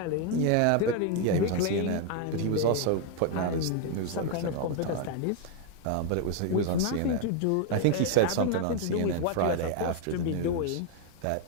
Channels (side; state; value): both; different; correlation 0.01